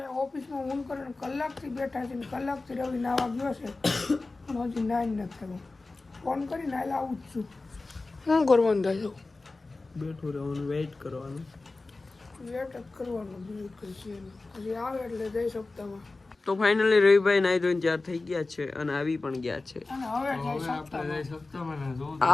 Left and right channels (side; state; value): right; quieter; 3.4 dB